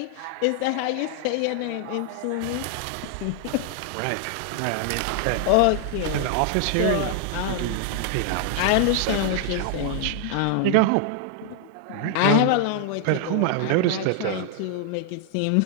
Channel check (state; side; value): different; both; correlation 0.00